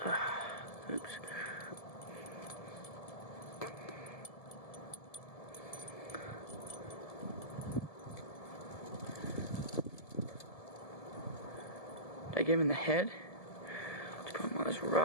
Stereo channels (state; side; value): late; right; 1.7 ms